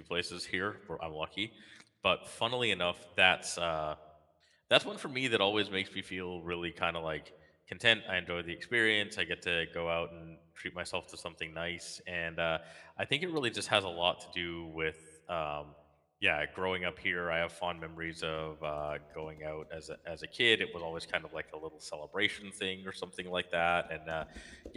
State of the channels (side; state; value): both; identical; correlation 1.00